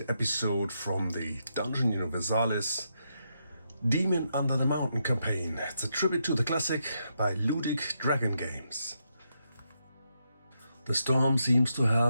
episode from the Dungeon Universalis Demon Under the Mountain campaign. It's a tribute to the classic by Ludic Dragon Games. The storm seems to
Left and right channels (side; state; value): both; inverted; correlation -0.81